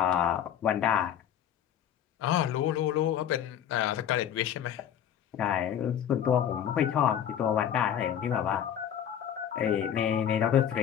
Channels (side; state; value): right; quieter; 9.6 dB